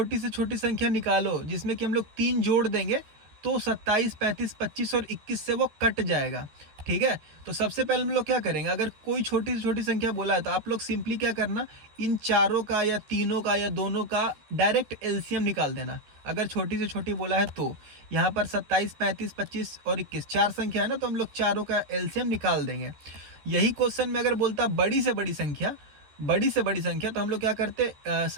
से छोटी संख्या निकालो जिसमें कि हम लोग 3 जोड़ देंगे तो 27, 35, 25 और 21 से वो कट जाएगा, ठीक है। तो सबसे पहले हम लोग क्या करेंगे, अगर कोई छोटी से छोटी संख्या बोला है तो आप लोग सिंपली क्या करना, इन चारों का या तीनों का या दोनों का डायरेक्ट एलसीएम निकाल देना। अगर छोटी से छोटी बोला है तो यहाँ पर 27, 35, 25 और 21 चार संख्या है ना, तो हम लोग चारों का एलसीएम निकाल देंगे। यही क्वेश्चन में अगर बोलता बड़ी से बड़ी संख्या, तो हम लोग क्या करते,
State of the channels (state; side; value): late; left; 14 ms